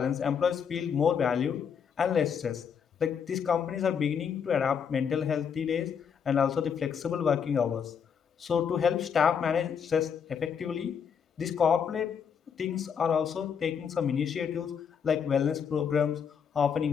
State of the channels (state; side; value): quieter; right; 7.2 dB